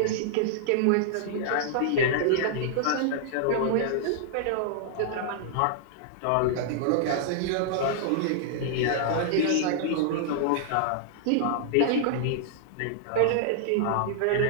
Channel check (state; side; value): different; both; correlation -0.01